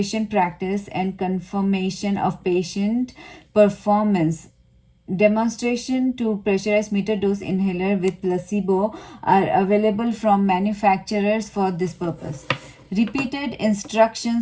practice and confirmation of patient performance. Demonstration to pressurized meter dose inhaler with placebo are available from manufacturers for this purpose. Repeated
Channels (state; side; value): identical; both; correlation 1.00